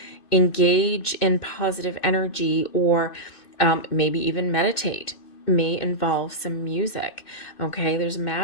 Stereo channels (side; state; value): right; late; 2.5 ms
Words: engage in positive energy, or maybe even meditate, may involve some music, okay? There's